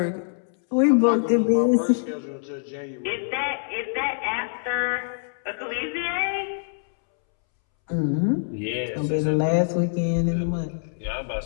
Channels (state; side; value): silent; right; 62 dB below the other